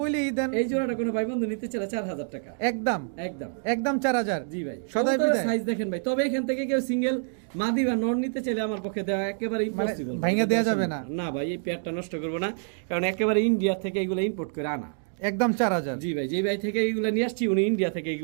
দেন। এই জোড়াটা কোনো ভাই বন্ধু নিতে চাইলে 4000 টাকা একদম একদম একদম 4000। জি ভাই, সদাই কবুতরের বিদায়। সাইজ দেখেন ভাই, তবে এখান থেকে কেউ সিঙ্গেল মাদি বা নর নিতে চাইলে আমার পক্ষে দেওয়া একেবারে ইম্পসিবল, ভাঙা দেওয়া যাবে না। না ভাই, এই পেয়ারটা নষ্ট করবো না, কারণ একেবারে ইন্ডিয়া থেকে এগুলো ইম্পোর্ট করে আনা। একদম 4000। জি ভাই, যেই ভাই থেকে এগুলো নিয়ে আসছি, উনি ইন্ডিয়া থেকে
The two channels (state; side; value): silent; left; 58 dB below the other